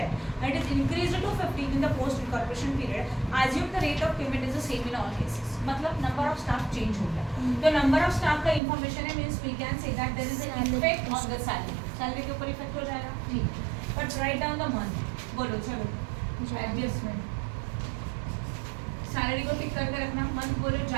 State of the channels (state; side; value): drops out; left; at 8.6 s